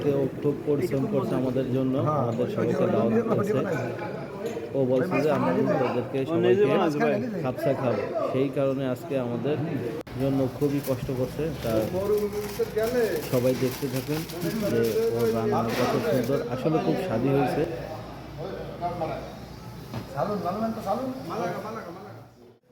ও খুব পরিশ্রম করছে আমাদের জন্য, আমাদের সবাইকে দাওয়াত করেছে। ও বলছে যে আমরা ওদেরকে সবাইকে খাপসা খাবো, সেই কারণে আজকে আমাদের জন্য খুবই কষ্ট করছে। তার সবাই দেখতে থাকেন যে ওর রান্না কত সুন্দর, আসলে খুব স্বাদই হয়েছে।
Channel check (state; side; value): identical; both; correlation 1.00